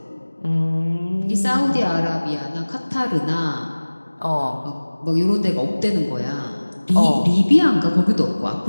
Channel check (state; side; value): inverted; both; correlation -1.00